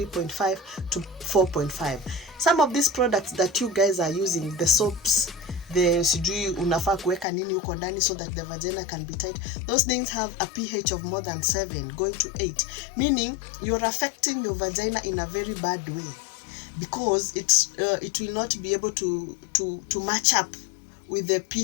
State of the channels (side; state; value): right; drops out; at 7.2 s